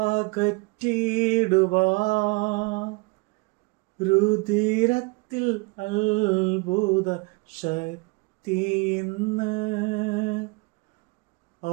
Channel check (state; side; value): quieter; left; 27.6 dB